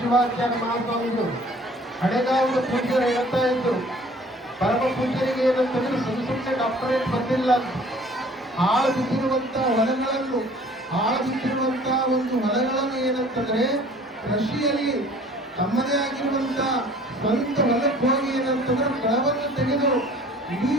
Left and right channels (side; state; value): both; normal; correlation 0.51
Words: ಶಿವಾಚಾರ್ಯ ಮಹಾಸ್ವಾಮಿಗಳು ಹಳೆಗಾವದ ಪೂಜ್ಯರು ಹೇಳ್ತಾ ಇದ್ರು, ಪರಮ ಪೂಜ್ಯರಿಗೆ ಏನಂತಂದ್ರೆ ಸುಮ್ಮನೆ ಡಾಕ್ಟರೇಟ್ ಬಂದಿಲ್ಲ, ಹಾಳು ಬಿದ್ದಿರುವಂತ ಒಂದು ಹೊಲಗಳನ್ನು ಏನಂತಂದ್ರೆ ಕೃಷಿಯಲ್ಲಿ ತಮ್ಮದೇ ಆಗಿರುವಂತ ಸ್ವಂತ ಹೊಲಕ್ಕೆ ಹೋಗಿ ಏನಂತಂದ್ರೆ ಕಳವನ್ನು ತೆಗೆದು ಇಡೀ